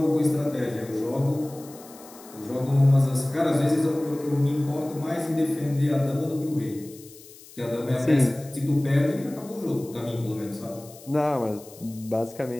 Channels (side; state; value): left; noise; hiss, 20 dB below the sound